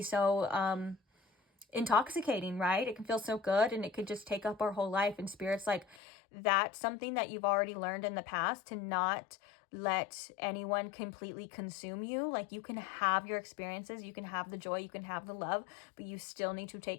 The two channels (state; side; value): drops out; right; at 6.0 s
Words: so intoxicating, right? It can feel so good, and it could just take up our whole life. And Spirit's like, that's something that you've already learned in the past, to not let anyone completely consume you. Like, you can have your experiences, you can have the joy, you can have the love, but you still need to